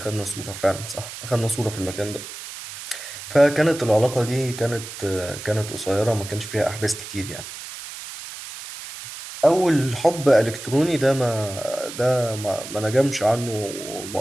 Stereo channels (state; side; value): noise; right; hiss, 11 dB below the sound